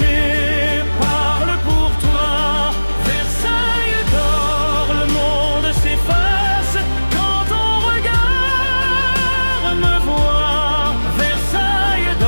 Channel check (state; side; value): inverted; both; correlation -1.00